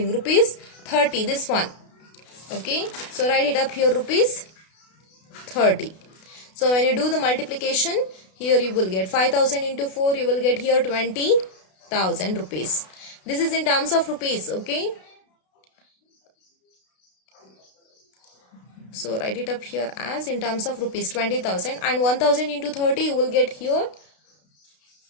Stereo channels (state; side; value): late; right; 32 ms